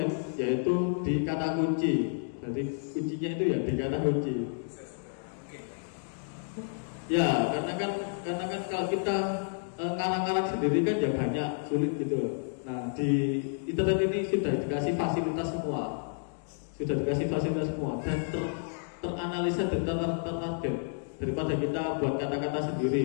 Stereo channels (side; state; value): right; silent; digital silence